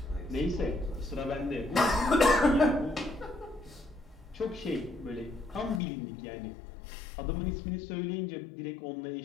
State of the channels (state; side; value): drops out; right; at 5.8 s